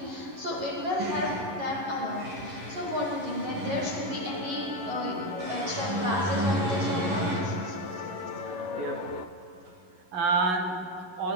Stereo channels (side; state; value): left; late; 11 ms